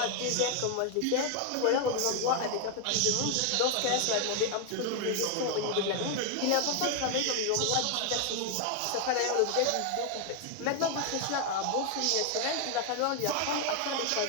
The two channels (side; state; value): both; different; correlation 0.00